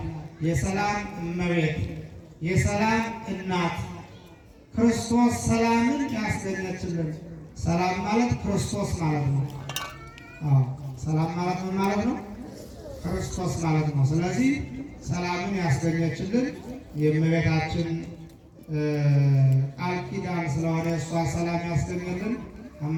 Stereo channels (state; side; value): identical; both; correlation 1.00